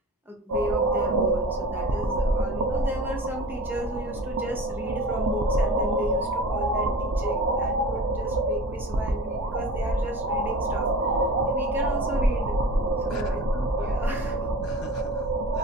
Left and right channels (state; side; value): normal; both; correlation 0.36